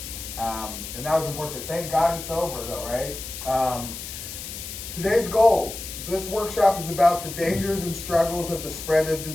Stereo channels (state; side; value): noise; left; hiss, 9 dB below the sound